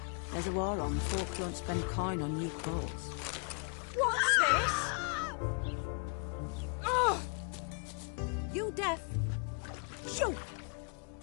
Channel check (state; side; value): quieter; right; 39.5 dB